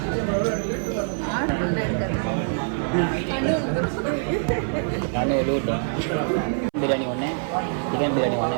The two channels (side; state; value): left; silent; 60 dB below the other